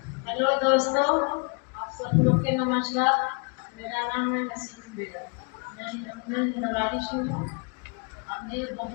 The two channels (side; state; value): right; quieter; 35.9 dB